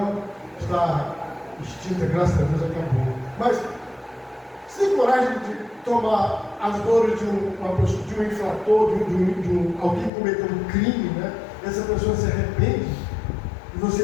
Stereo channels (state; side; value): drops out; right; at 10.1 s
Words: está extinta, graças a Deus acabou. Mas você tem coragem de tomar as dores de uma pessoa, de um infrator, de alguém que cometeu um crime, né? essa pessoa se arrepende, e